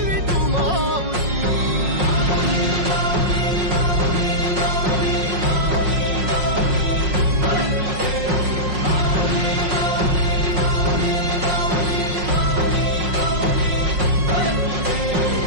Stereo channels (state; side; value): late; left; 5.5 ms